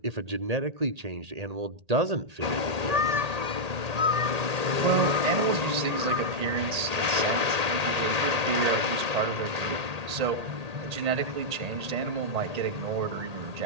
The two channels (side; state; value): left; late; 1.8 ms